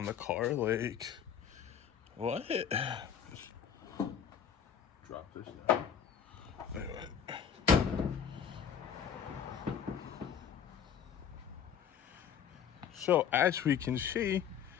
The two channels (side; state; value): right; quieter; 8.0 dB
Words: the car. Like, what? Drop this down. Anyway. So, as we can see,